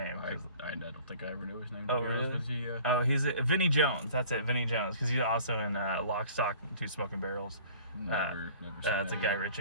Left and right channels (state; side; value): inverted; both; correlation -0.49